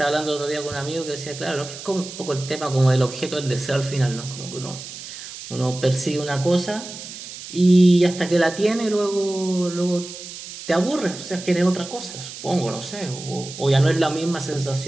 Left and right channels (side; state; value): right; noise; hiss, 12 dB below the sound